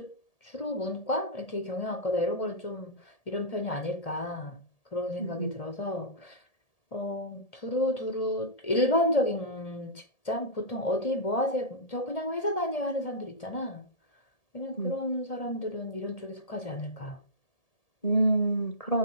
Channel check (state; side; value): late; right; 1.8 ms